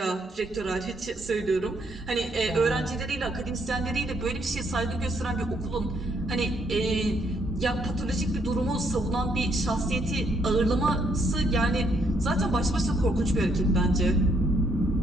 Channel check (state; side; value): normal; both; correlation 0.71